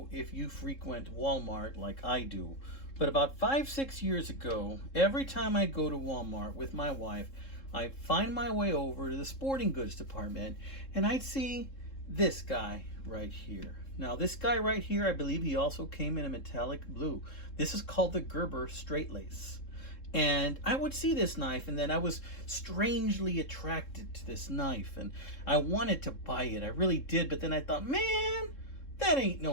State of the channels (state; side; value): late; right; 3.7 ms